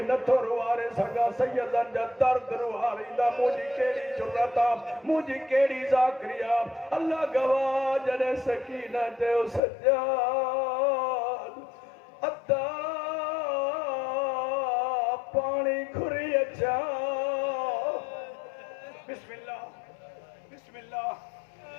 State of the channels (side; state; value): right; drops out; at 9.6 s